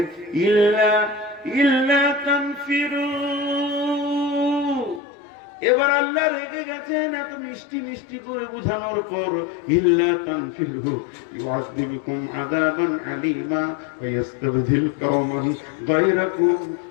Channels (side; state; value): right; drops out; at 5.0 s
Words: ইল্লা তানফিরু। এবার আল্লাহ রেগে গেছেন এত মিষ্টি মিষ্টি করে বুঝানোর পর, ইল্লা তানফিরু ইউআযযিবুকুম আযাবান আলীমা ওয়া ইস্তাবদিল কওমান গায়রাকুম